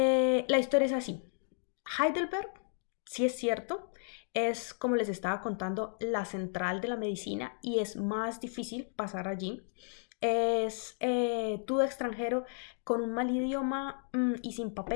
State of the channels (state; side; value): silent; right; 56 dB below the other